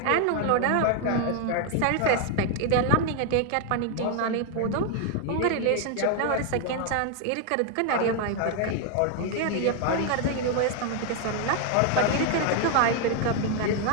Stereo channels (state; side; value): different; both; correlation 0.00